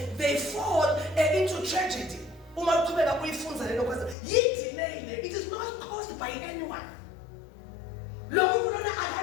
they fall into tragedy. It is not caused by anyone.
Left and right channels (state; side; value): drops out; right; at 4.2 s